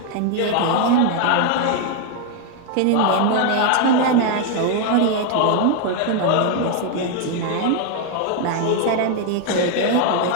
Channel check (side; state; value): both; different; correlation 0.01